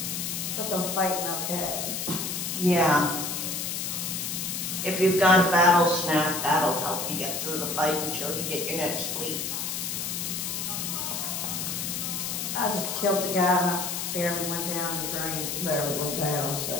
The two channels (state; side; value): noise; left; hiss, 3 dB below the sound